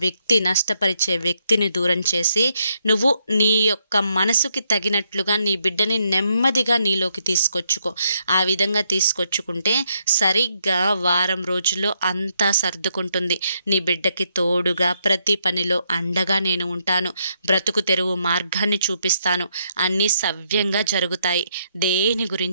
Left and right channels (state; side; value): inverted; both; correlation -0.77